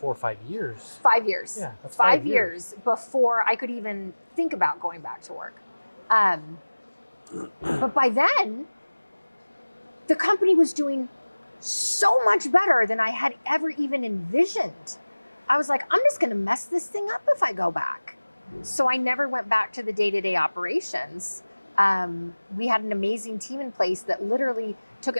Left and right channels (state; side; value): inverted; both; correlation -1.00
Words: or 5 years. 5 years. Yeah, that's 5 years before I could even think about going back to work. But by then, the company was doing so much better than I had ever even envisioned. I was like, I'm just going to mess this thing up if I go back. So I never went back to the day-to-day operations. We had an amazing team in place that literally took